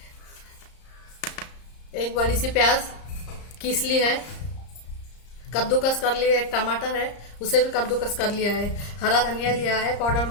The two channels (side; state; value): right; late; 34 ms